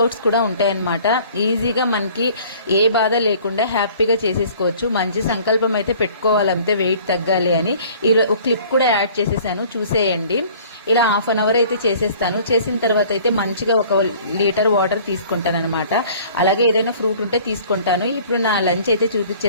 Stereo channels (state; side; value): inverted; both; correlation -0.51